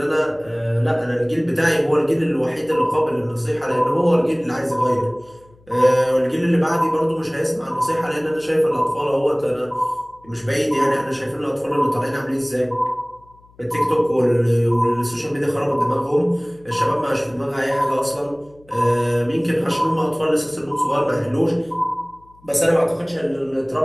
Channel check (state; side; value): noise; left; hum, 29 dB below the sound